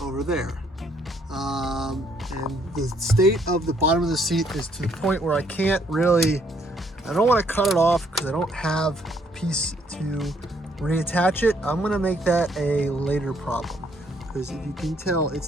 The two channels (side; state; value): both; normal; correlation 0.68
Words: over there. And the state of the bottom of the seat is to the point where I can't really, I don't want to cut it off because I don't have a piece to reattach it. I'm going to make that a later problem. because if you can tell,